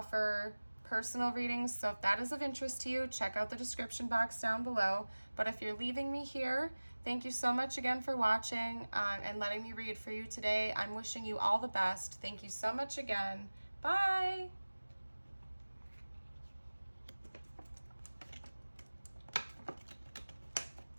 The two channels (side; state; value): both; inverted; correlation -1.00